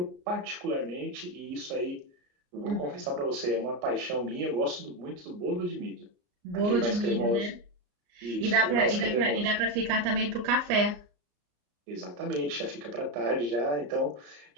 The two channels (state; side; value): late; left; 34 ms